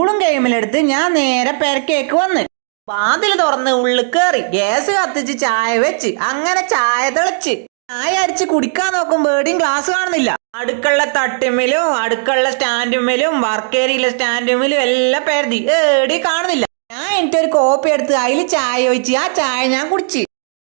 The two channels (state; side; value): silent; left; digital silence